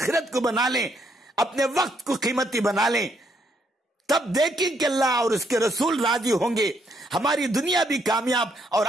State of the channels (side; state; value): both; normal; correlation 0.73